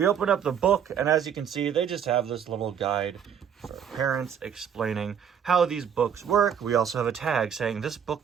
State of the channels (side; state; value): left; quieter; 8.1 dB